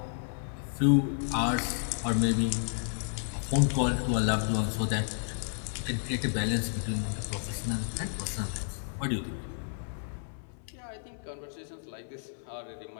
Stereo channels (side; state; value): right; silent; 57 dB below the other